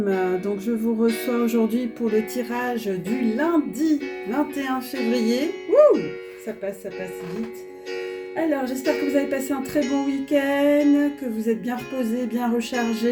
Donc je vous reçois aujourd'hui pour le tirage du lundi 21 février. Wouh, ça passe vite. Alors j'espère que vous avez passé un très bon week-end, que vous êtes bien reposés, bien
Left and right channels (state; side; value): identical; both; correlation 1.00